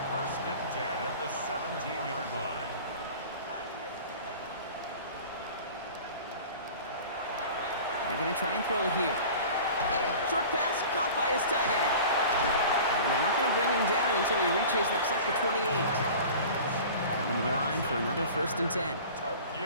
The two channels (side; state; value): both; inverted; correlation -0.40